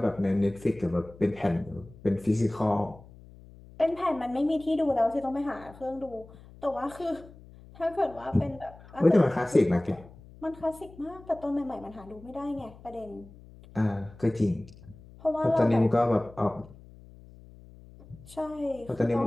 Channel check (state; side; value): noise; left; hum, 21 dB below the sound